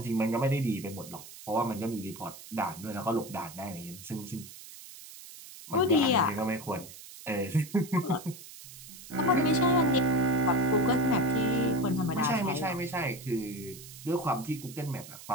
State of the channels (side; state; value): right; noise; hiss, 16 dB below the sound